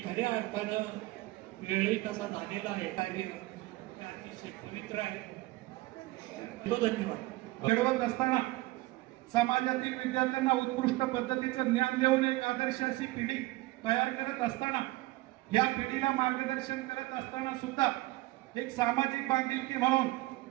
खऱ्या अर्थानं वेळही कसा झालेला आहे. कार्य अतिशय पवित्र आहे. धन्यवाद. घडवत असताना समाजातील विद्यार्थ्यांना उत्कृष्ट पद्धतीचं ज्ञान देऊन एक आदर्श अशी पिढी तयार करत असताना, या पिढीला मार्गदर्शन करत असताना सुद्धा एक सामाजिक बांधिलकी म्हणून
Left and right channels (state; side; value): quieter; left; 19.7 dB